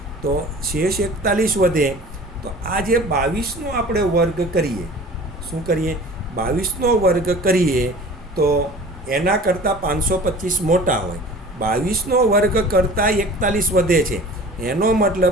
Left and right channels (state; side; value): normal; both; correlation 0.42